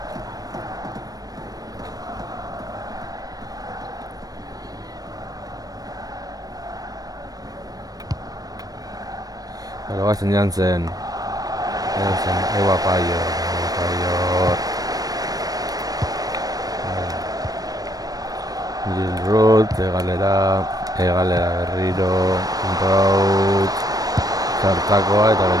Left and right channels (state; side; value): late; left; 0.18 ms